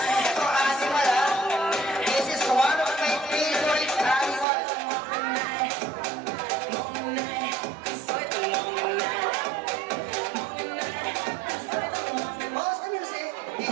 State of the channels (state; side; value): drops out; left; at 4.5 s